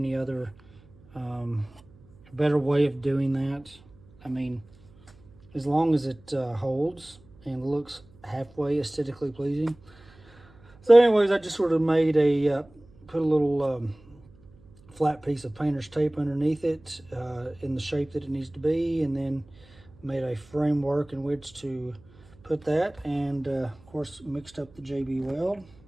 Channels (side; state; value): right; noise; hum, 26 dB below the sound